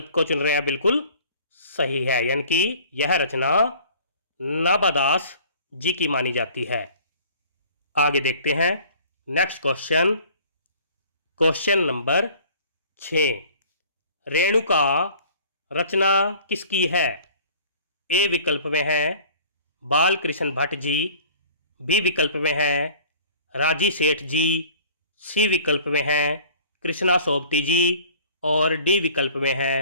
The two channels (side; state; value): both; inverted; correlation -0.49